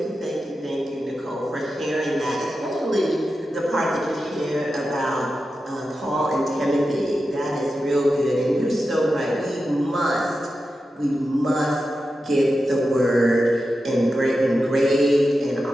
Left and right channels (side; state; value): both; normal; correlation 0.91